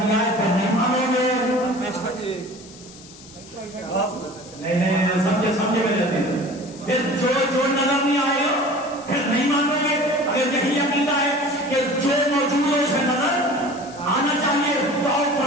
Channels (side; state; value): left; noise; hiss, 20 dB below the sound